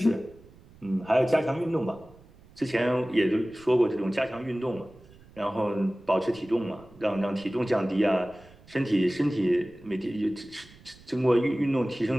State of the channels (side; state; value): right; noise; rumble, 24 dB below the sound